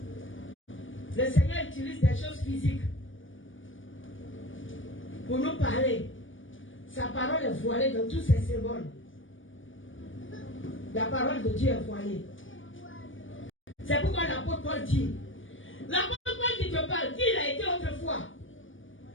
Le Seigneur utilise des choses physiques pour nous parler. Sa parole est voilée dans tous ses symboles. La parole de Dieu est voilée. C'est pourquoi l'apôtre Paul dit, l'apôtre Paul qui te parle, qui il a été autrefois?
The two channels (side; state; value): right; late; 0.57 ms